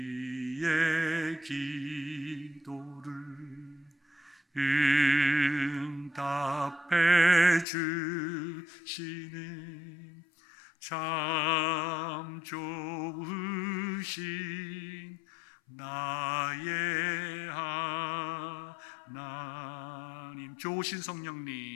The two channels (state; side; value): drops out; right; at 7.7 s